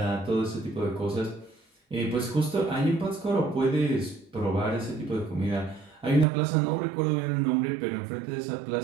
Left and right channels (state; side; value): drops out; left; at 6.2 s